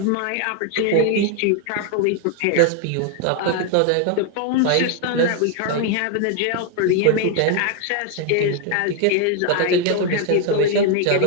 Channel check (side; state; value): both; different; correlation 0.01